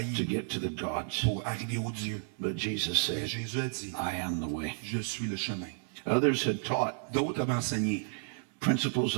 get to the gods. pour arriver au Dieu. But Jesus Et said, Jésus a dit, I am the way. je suis le chemin. Others had taught D'autres avaient enseigné principles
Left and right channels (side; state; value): left; silent; digital silence